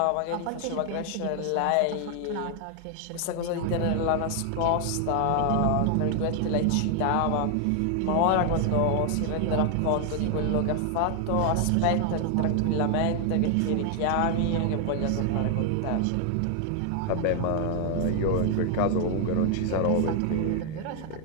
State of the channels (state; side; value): different; both; correlation 0.00